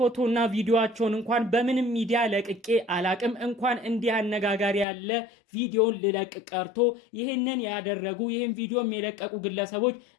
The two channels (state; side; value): drops out; right; at 4.9 s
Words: ቪዲዮቸውን እንኳን በምንም ሚዲያ ለቅቄ አላቅም። እንኳን እንዲህ አነጋጋሪ ያለ ቪዲዮን ልለቅ ቀርቶ ይህንን ያደረጉ ይህን ቪዲዮ የለቀቁ ግለሰቦች